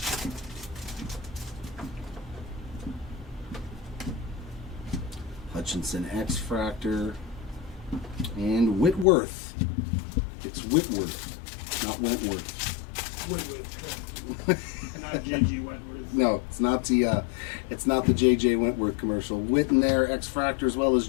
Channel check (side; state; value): right; drops out; at 9.1 s